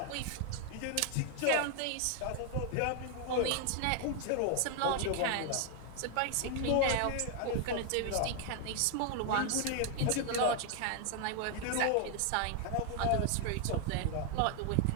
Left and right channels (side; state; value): both; different; correlation 0.00